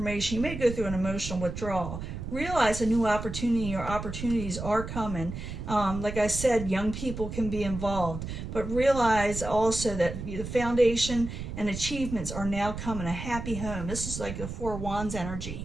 you may go through an emotional withdrawal. Realize a new opportunity or opportunities are coming. Like I said, young people can be involved. But realize also that the foundation and achievements are now coming. A happy home. This is like the Four Wands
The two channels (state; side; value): noise; right; rumble, 7 dB below the sound